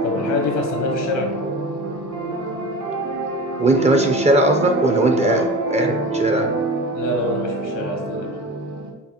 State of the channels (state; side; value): normal; both; correlation 0.33